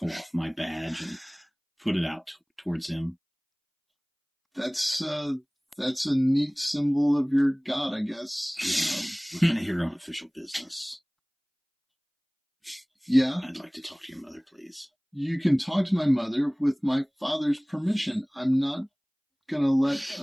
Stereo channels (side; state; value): both; identical; correlation 1.00